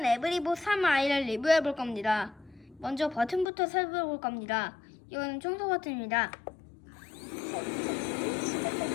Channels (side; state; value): right; drops out; at 3.5 s